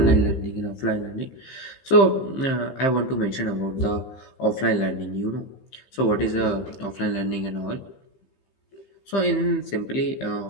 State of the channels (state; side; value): late; right; 15 ms